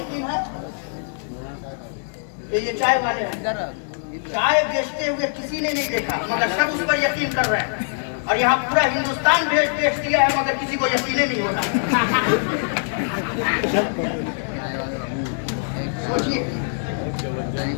है कि ये चाय वाले हैं। चाय बेचते हुए किसी ने नहीं देखा, मगर सब उस पर यकीन कर रहे हैं, और यहाँ पूरा हिंदुस्तान बेच दिया है, मगर किसी को यकीन नहीं होता। सोचिए,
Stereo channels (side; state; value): right; silent; digital silence